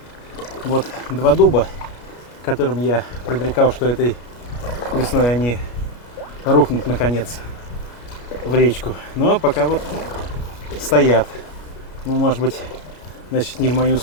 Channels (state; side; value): late; right; 31 ms